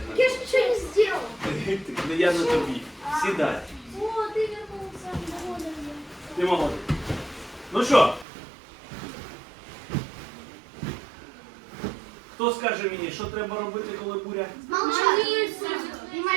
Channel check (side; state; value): left; drops out; at 8.2 s